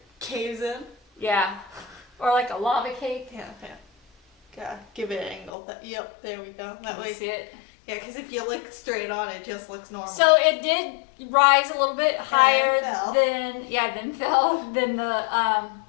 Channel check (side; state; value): right; drops out; at 5.5 s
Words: caves in. Yeah. Or like a lava cake. Yeah. Yeah. Give it an angle. Yep. There we go. That Can way. you see it? Yeah, because if you look straight on, it just looks normal. So it did rise a little bit higher fell. than the